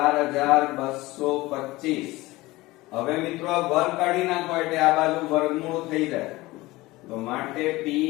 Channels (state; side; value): quieter; right; 19.9 dB